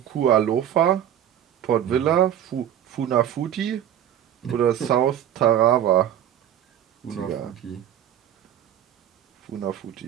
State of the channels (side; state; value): left; quieter; 10.5 dB